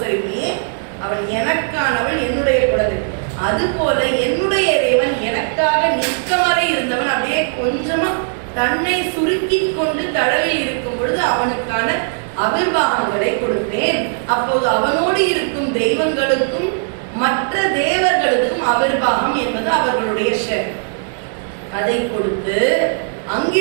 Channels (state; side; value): silent; left; 67 dB below the other